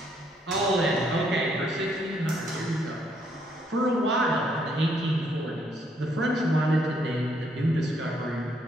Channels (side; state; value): both; normal; correlation 0.71